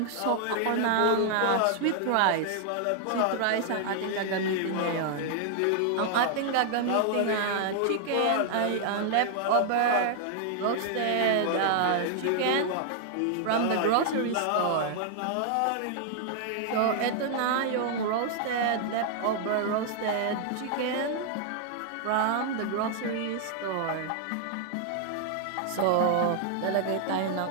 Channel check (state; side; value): different; both; correlation -0.01